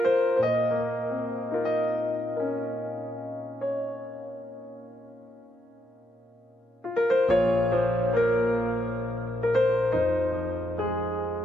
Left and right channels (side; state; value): both; normal; correlation 0.78